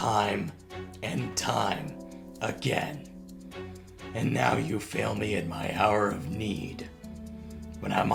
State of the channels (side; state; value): both; identical; correlation 1.00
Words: and time again. And now you fail me in my hour of need, when I'm